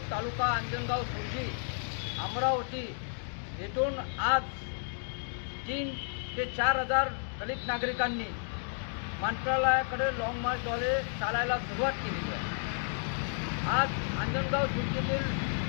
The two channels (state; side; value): silent; right; digital silence